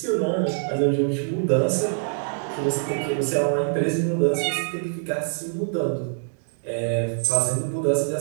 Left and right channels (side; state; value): left; silent; digital silence